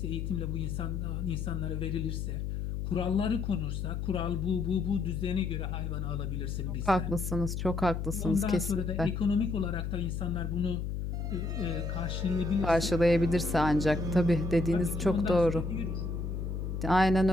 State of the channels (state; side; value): noise; left; hum, 3 dB below the sound